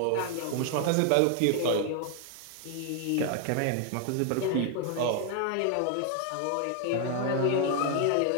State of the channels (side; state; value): both; different; correlation 0.00